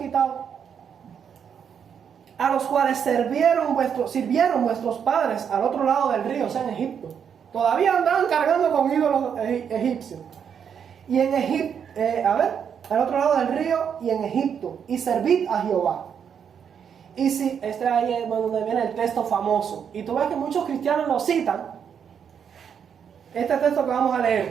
a los cuales sirvieron vuestros padres al otro lado del río, o sea, en Egipto. Todavía andaban cargando con ídolos egipcios. Y en Egipto, al otro lado del río y en Egipto, y servid a Jehová. Y si, ahí es donde viene el texto famoso, y tú ves que muchos cristianos lo citan, este texto que vamos a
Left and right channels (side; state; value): left; quieter; 7.6 dB